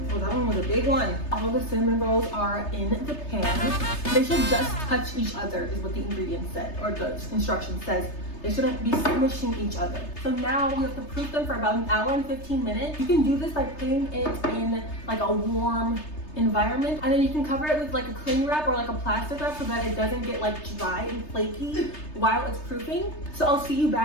one was a big one. All the cinnamon rolls are in the pan. They should just touch each other is what the ingredient said, or the instruction says. They shouldn't be smushing each other. So now we have to proof them for about 1 hour and 15 minutes. You can do this by putting it in like a warm environment, and then you can cover it with like a cling wrap or like a plastic wrap so that it doesn't get like dry and flaky while it's proofing. So I'll see you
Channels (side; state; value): right; late; 3.3 ms